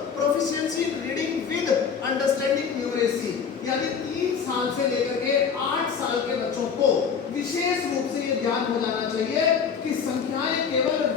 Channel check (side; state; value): right; quieter; 6.5 dB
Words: proficiency in reading with understanding numeracy. यानी 3 साल से लेकर के 8 साल के बच्चों को विशेष रूप से ये ज्ञान हो जाना चाहिए कि संख्याएं केवल